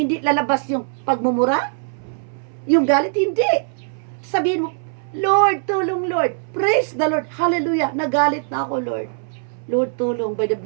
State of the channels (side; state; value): left; silent; 65 dB below the other